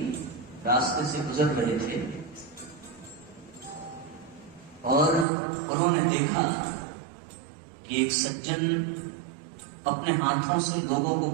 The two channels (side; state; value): left; drops out; at 5.2 s